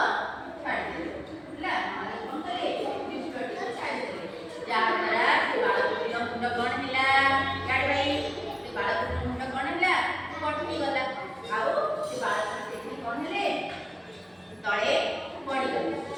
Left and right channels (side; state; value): both; identical; correlation 1.00